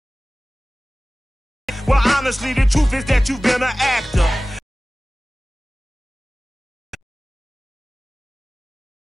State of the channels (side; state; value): both; normal; correlation 0.98